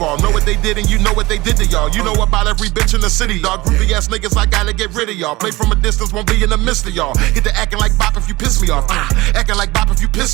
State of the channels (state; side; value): quieter; left; 20.3 dB